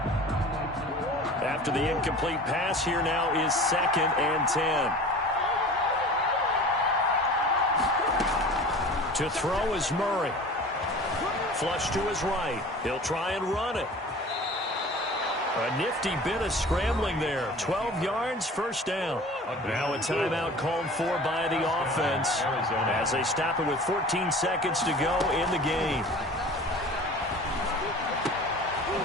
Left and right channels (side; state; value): both; normal; correlation 0.41